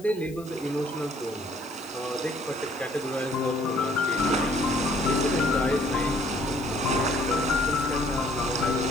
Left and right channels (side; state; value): left; noise; hiss, 22 dB below the sound